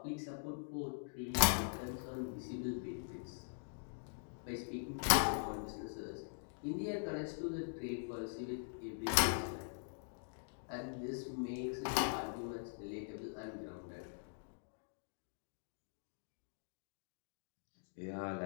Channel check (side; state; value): right; silent; digital silence